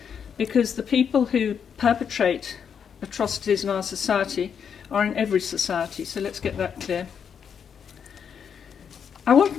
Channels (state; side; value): quieter; right; 7.4 dB